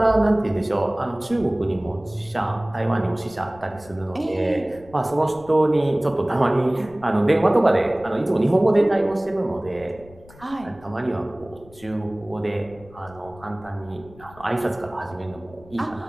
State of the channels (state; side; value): noise; left; rumble, 22 dB below the sound